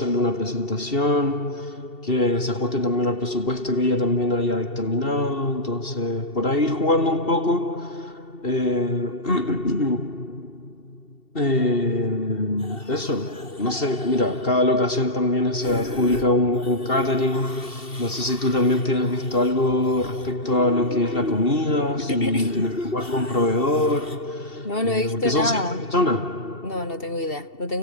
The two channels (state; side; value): late; right; 2.7 ms